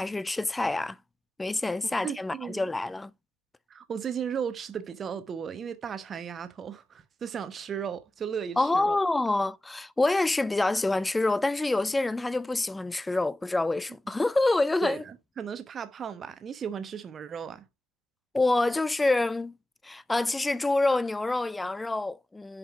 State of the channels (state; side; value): normal; both; correlation 0.95